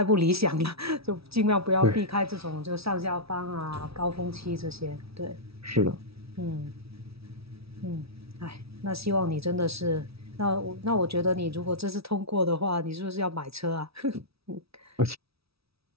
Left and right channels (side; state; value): left; late; 0.76 ms